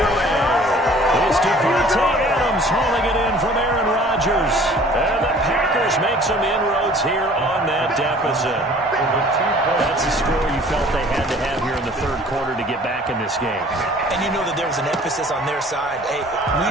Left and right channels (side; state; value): both; normal; correlation 0.51